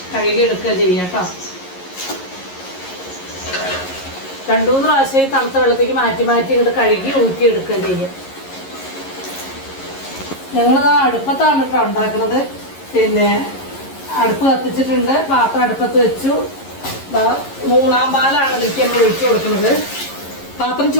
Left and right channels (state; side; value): late; right; 11 ms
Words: കഴുകി എടുക്കുക ചെയ്യാം കേട്ടോ. 2-3 പ്രാവശ്യം തണുത്ത വെള്ളത്തേക്ക് മാറ്റി ഇങ്ങോട്ട് കഴുകി ഊറ്റി എടുക്കുക ചെയ്യാം. ഞങ്ങളത് അടുപ്പത്താണ് കേട്ടോ ഉണ്ടാക്കുന്നത്. പിന്നെ അടുപ്പ് കത്തിച്ചിട്ടുണ്ട്. പാത്രം അടുപ്പത്ത് വെച്ചു. 3-ാം പാലാണ് ഇതിലേക്ക് നമ്മൾ ഒഴിച്ചു കൊടുക്കുന്നത്. പാത്രം